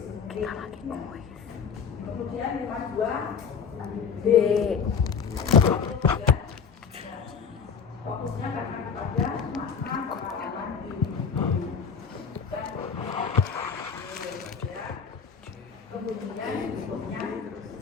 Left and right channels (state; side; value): quieter; right; 6.4 dB